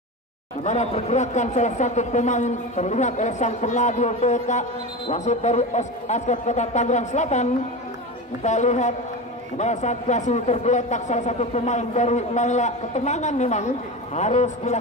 Di mana pergerakan salah satu pemain terlihat oleh sang pengadil BK wasit dari Askot Kota Tangerang Selatan. Kita lihat di mana saat kasih tergeletak salah satu pemain dari Naila. Ketenangan memang harus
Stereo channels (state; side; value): normal; both; correlation 0.25